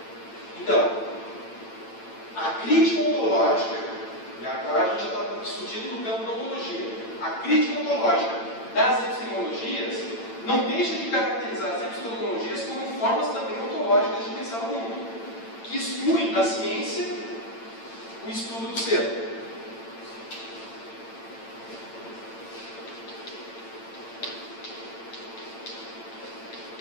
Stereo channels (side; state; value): right; late; 8.9 ms